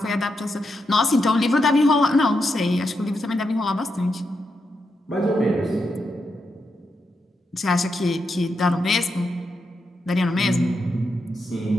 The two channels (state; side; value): normal; both; correlation 0.84